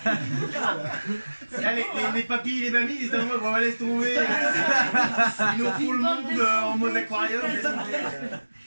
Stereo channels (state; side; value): inverted; both; correlation -1.00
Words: Là, les papis et les mamies, ils se disent, on va laisser tomber. Ils nous font le monde en mode aquarium. laisse tomber.